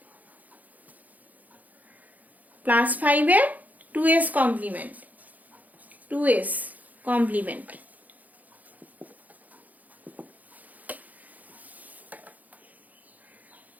+5 এর 2s কমপ্লিমেন্ট, 2s কমপ্লিমেন্ট।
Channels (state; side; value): late; left; 0.079 ms